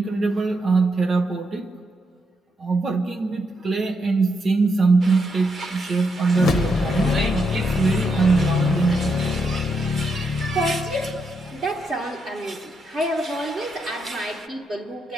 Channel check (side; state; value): both; normal; correlation 0.81